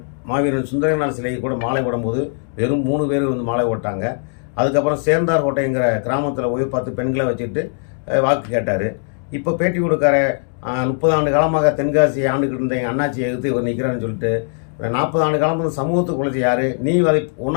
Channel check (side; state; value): right; silent; 58 dB below the other